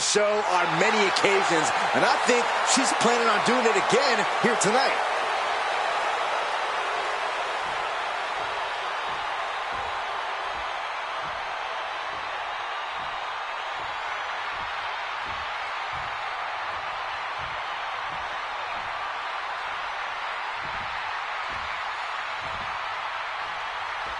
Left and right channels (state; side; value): noise; right; rumble, 30 dB below the sound